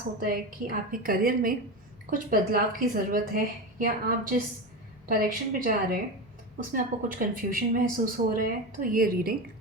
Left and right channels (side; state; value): both; normal; correlation 0.21